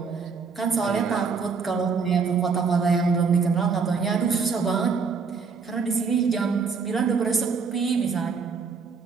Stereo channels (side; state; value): left; quieter; 5.3 dB